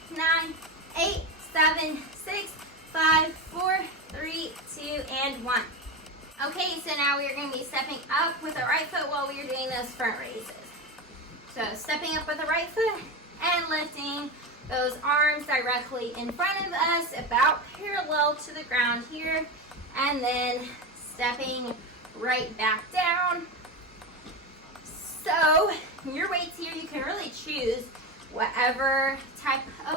9, 8, 7, 6, 5, 4, 3, 2, and 1. Okay, so now we are going to be stepping up with our right foot while we are doing those front raises. So stepping up with the right foot and lifting those arms directly in front of us, about parallel to the ground here, and then stepping right back down. So your weights here, you can really choose whatever type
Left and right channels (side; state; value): both; normal; correlation 0.19